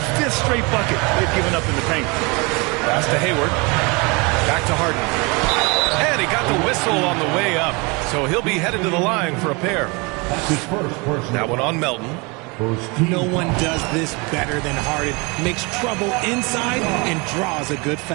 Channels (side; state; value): left; quieter; 28.2 dB